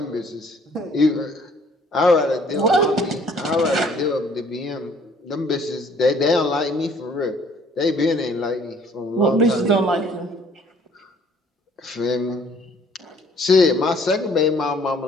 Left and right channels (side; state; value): both; normal; correlation 0.58